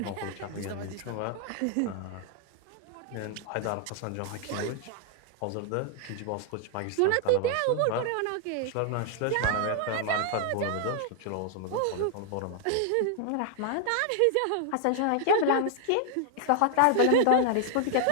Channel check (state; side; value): different; both; correlation 0.00